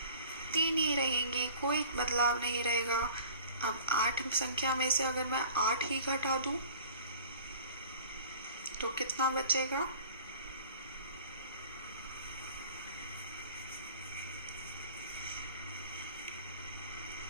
3 ही रहेंगी, कोई बदलाव नहीं रहेगा। अब 8 संख्या में से अगर मैं 8 ही घटा दूं तो कितना बचेगा?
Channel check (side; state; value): both; inverted; correlation -0.46